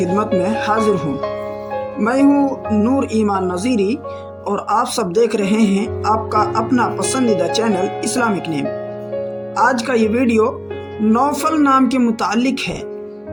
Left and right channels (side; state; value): both; identical; correlation 1.00